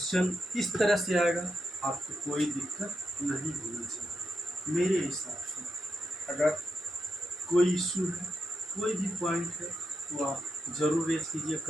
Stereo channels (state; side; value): normal; both; correlation 0.84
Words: इस तरह से आएगा आपको कोई दिक्कत नहीं होनी चाहिए। मेरे हिसाब से अगर कोई इशू है, कोई भी पॉइंट है तो आप ज़रूर रेज कीजिए